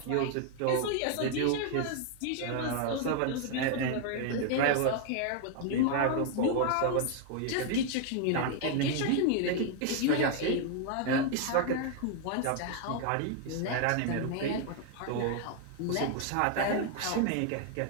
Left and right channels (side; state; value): both; different; correlation 0.00